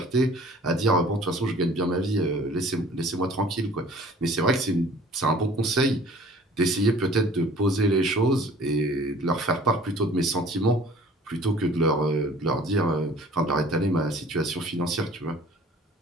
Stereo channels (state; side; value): normal; both; correlation 0.50